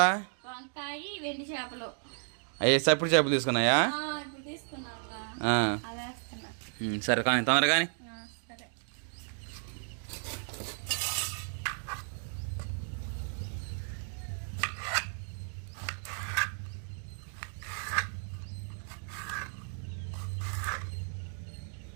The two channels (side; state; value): left; silent; 55 dB below the other